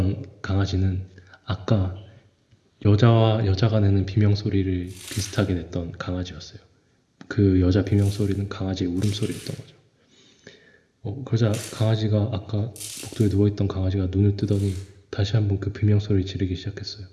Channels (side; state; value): both; identical; correlation 1.00